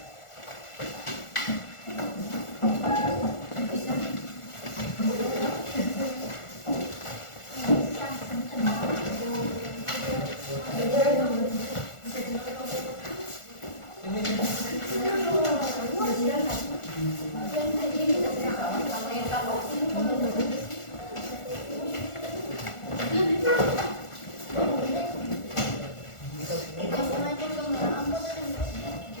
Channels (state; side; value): late; right; 1.4 ms